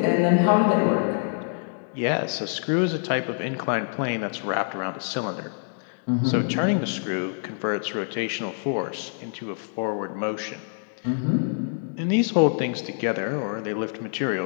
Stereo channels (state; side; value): silent; right; digital silence